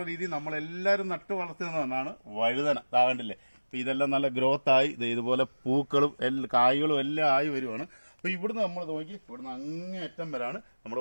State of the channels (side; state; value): both; inverted; correlation -1.00